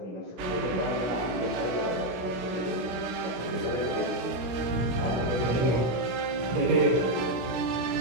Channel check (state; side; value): late; left; 17 ms